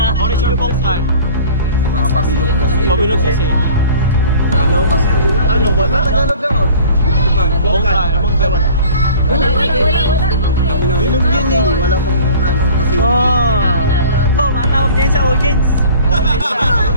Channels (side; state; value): both; inverted; correlation -0.46